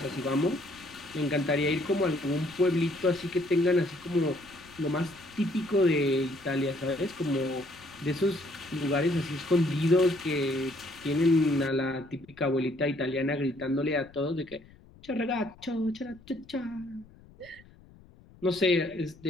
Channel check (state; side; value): noise; left; rumble, 24 dB below the sound